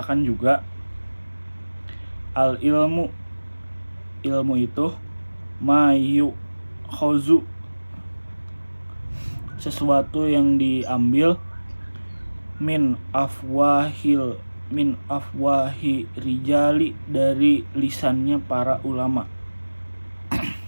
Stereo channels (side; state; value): both; inverted; correlation -1.00